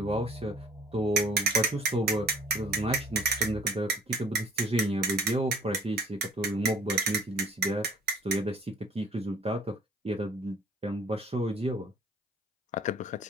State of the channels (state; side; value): normal; both; correlation 0.54